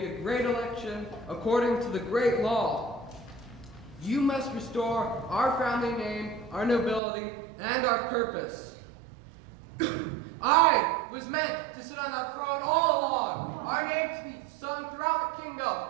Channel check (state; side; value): drops out; left; at 7.0 s